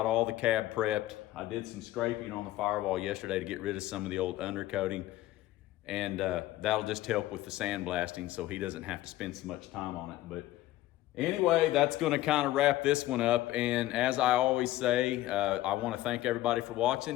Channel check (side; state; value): right; quieter; 15.5 dB